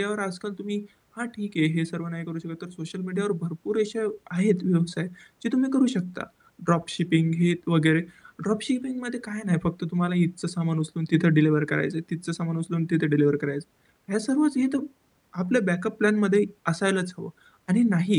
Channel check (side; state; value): both; identical; correlation 1.00